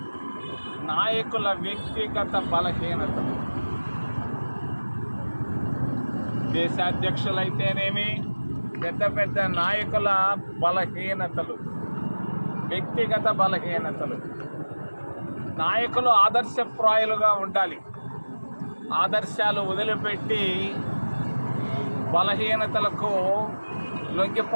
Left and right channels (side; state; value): both; inverted; correlation -1.00